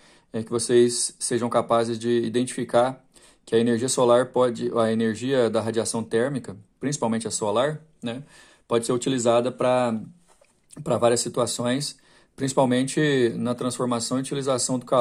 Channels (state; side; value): identical; both; correlation 1.00